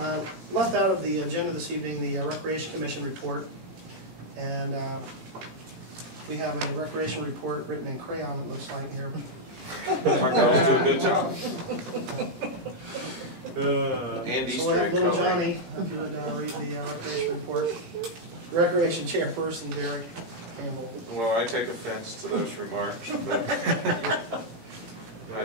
Left out of the agenda this evening, the Recreation Commission report. And we have a recreation report written in crayon, it looks like here. My girls do a good job. Andy's So we'll have little coloring. Johnny, if you would read the recreation report. Recreation chairperson Derek Campbell. Well, I take offense to those remarks, but I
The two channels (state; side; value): late; left; 18 ms